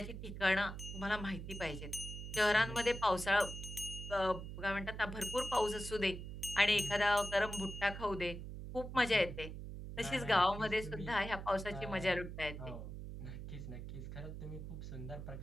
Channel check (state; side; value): noise; right; hum, 8 dB below the sound